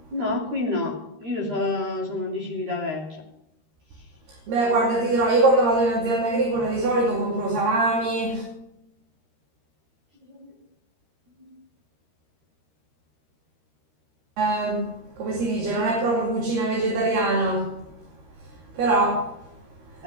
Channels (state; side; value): late; left; 13 ms